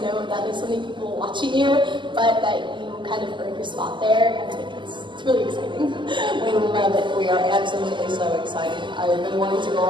know that there's so many people watching you, but that you kind of earned your spot there. I think it's really exciting. We love it. We are absolutely so excited. I've been wanting to go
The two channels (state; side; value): late; left; 0.24 ms